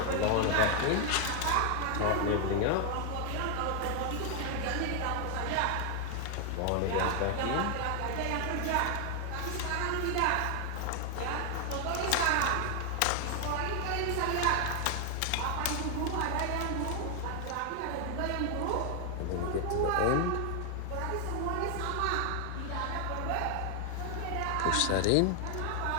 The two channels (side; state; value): both; different; correlation 0.00